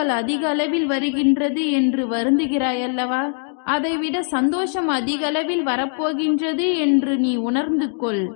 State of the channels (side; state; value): right; silent; 59 dB below the other